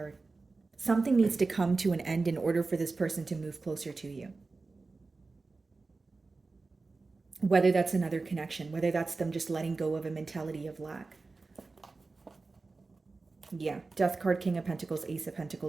Something needs to come to an end in order for this person to move closer to you. Whether that's another connection, whether that's them just letting go of a mentality of lack. Yeah, Death card, King of Pentacles, Ace of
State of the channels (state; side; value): quieter; left; 3.8 dB